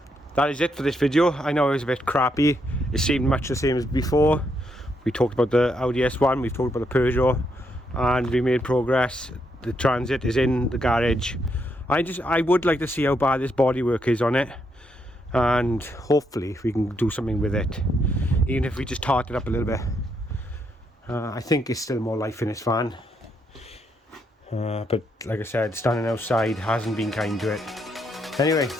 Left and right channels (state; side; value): normal; both; correlation 0.77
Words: That is it for this video. I know it was a bit crappy. It seemed much the same as before. We talked about the Audi S1. We've talked about the Peugeot. And we made progress. The Transit is in the garage. I would like to see how bad this bodywork is on it. And hopefully we can do something with it, even if we just tart it up a little bit. I think there's still more life in this van, but like I said, standing outside hasn't been kind to it. Anyway,